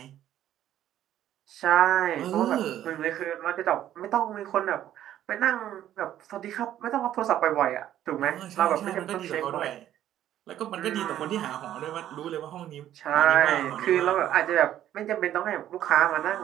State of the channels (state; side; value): quieter; left; 11.8 dB